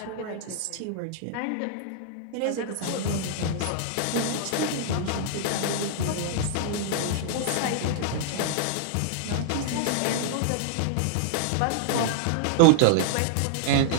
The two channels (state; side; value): different; both; correlation -0.01